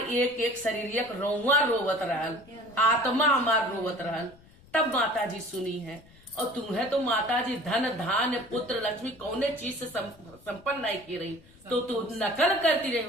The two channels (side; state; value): left; noise; rumble, 25 dB below the sound